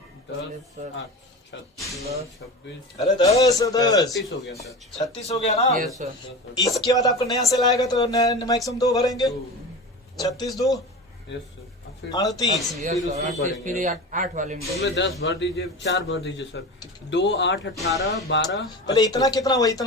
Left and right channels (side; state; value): both; normal; correlation 0.30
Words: 10 8 26। अरे 10 36 हो गया सर। 36 हो गया ना? Yes sir. इसके बाद आपको नया सेल आएगा तो मैक्सिमम 2 भरेंगे। 36 2 यस सर। फिर 38। Yes sir. फिर 8 वाले में उसमें 10 भर दीजिए, 4 भर दीजिए सर। 2 8 18 12। पहले इतना कितना हुआ?